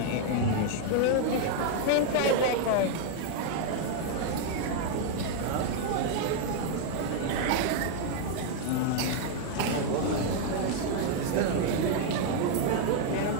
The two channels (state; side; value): different; both; correlation 0.00